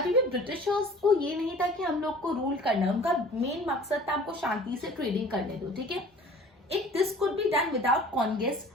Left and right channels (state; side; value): normal; both; correlation 0.47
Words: भी ब्रिटिशर्स को ये नहीं था कि हम लोग को रूल करना है, उनका मेन मकसद था हमको शांति से ट्रेडिंग करने दो, ठीक है। If this could be done without conquest